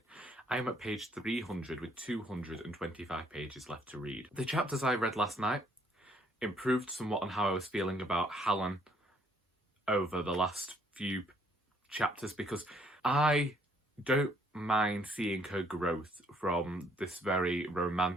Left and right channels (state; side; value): normal; both; correlation 0.66